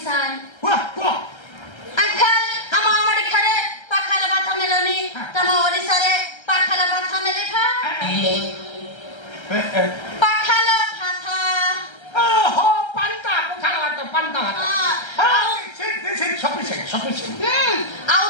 वाह अंकल हम आमडी खरे पाखाला बाथा मेलोनी तम ओडिसा रे पाखाला बाथा मेले था पाखाला बाथा ओहो पंता this is sufficient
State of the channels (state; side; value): late; right; 1.3 ms